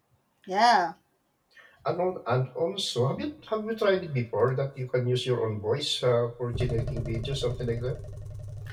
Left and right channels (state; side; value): identical; both; correlation 1.00